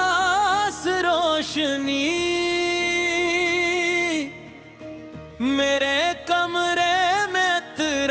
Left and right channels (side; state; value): both; identical; correlation 1.00